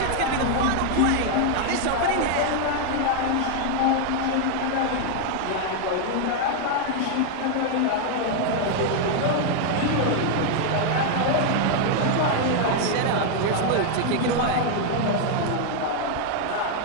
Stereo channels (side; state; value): both; different; correlation 0.00